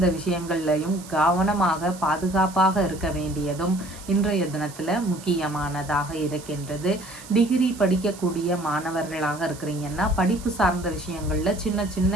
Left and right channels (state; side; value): noise; right; hiss, 17 dB below the sound